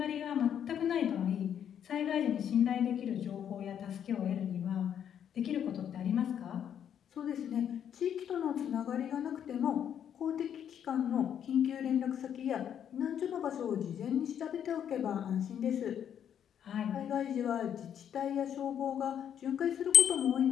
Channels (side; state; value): right; quieter; 9.1 dB